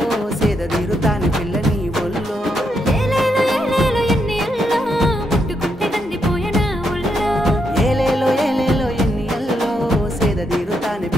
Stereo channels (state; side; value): normal; both; correlation 0.80